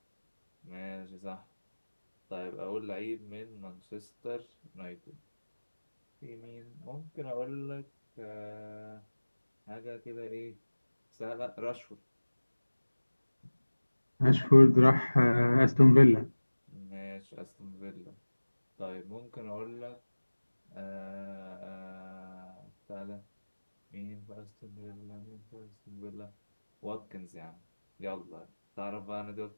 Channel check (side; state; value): both; inverted; correlation -1.00